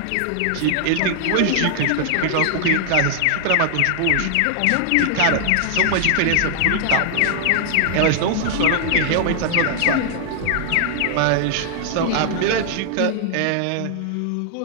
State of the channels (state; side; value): different; both; correlation 0.00